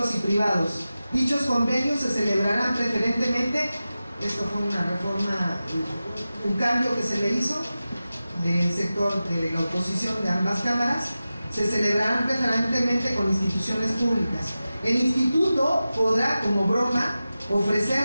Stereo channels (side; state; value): both; inverted; correlation -0.94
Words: y privados. Dichos convenios se celebrarán preferentemente, esto fue una reforma, un cambio que se le hizo del sector de la oposición de ambas cámaras, se celebrarán preferentemente con instituciones públicas. El instituto podrá, como broma,